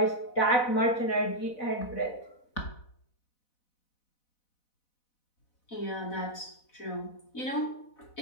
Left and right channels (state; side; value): late; right; 4.0 ms